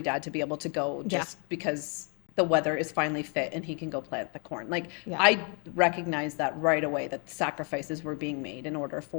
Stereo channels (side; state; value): right; quieter; 37.5 dB